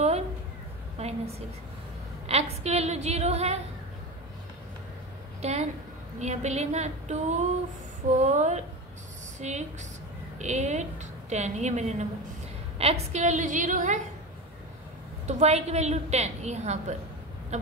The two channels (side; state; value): both; normal; correlation 0.25